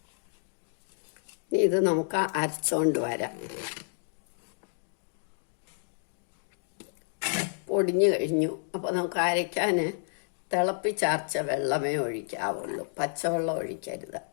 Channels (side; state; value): right; silent; digital silence